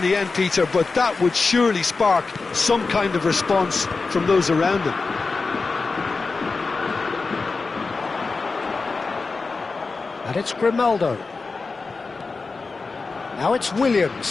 the end, Peter, but that would surely spark some kind of response from those around him. And it's Grimaldo. Now it's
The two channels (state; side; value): quieter; right; 4.1 dB